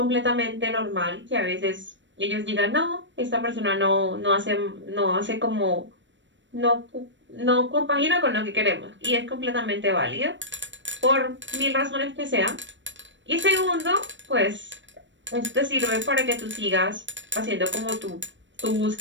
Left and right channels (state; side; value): late; left; 0.54 ms